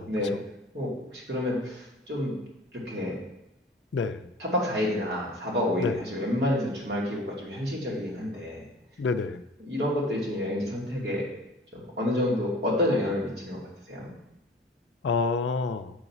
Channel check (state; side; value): normal; both; correlation 0.43